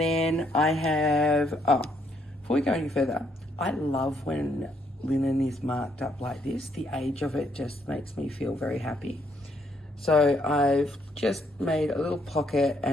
I have, before we go any further, I love when linen is marked up like this. The age of it just makes me feel very happy. So I've just made a little pocket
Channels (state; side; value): normal; both; correlation 0.71